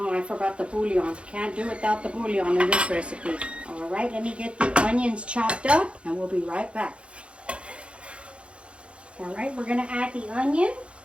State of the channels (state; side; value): late; left; 0.059 ms